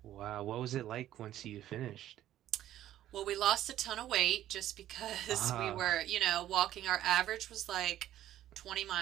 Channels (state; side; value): quieter; left; 12.7 dB